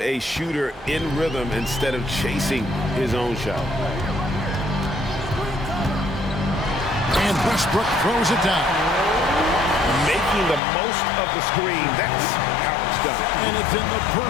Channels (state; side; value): drops out; right; at 10.6 s